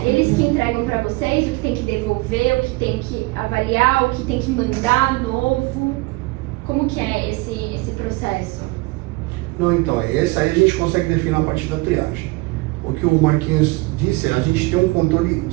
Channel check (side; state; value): left; quieter; 23.3 dB